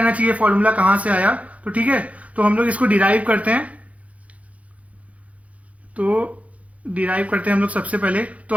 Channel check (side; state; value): left; late; 0.066 ms